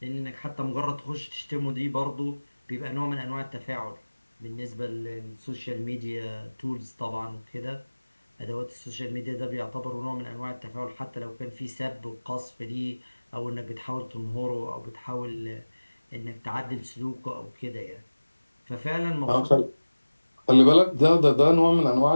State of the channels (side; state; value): both; inverted; correlation -1.00